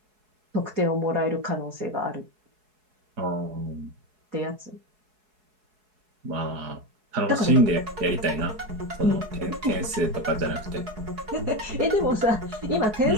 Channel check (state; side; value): late; left; 4.7 ms